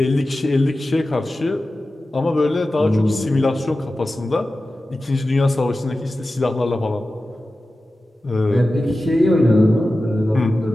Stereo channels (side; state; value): both; normal; correlation 0.94